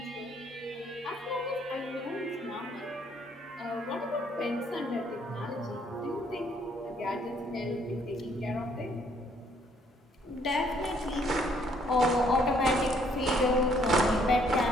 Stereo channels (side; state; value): both; normal; correlation 0.66